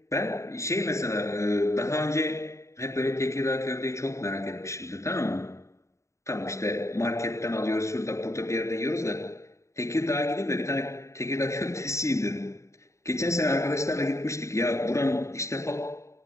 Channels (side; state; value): right; late; 0.14 ms